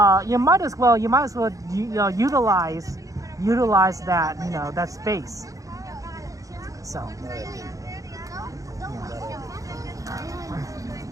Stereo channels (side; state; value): left; late; 0.16 ms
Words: You might as well utilize that that space. So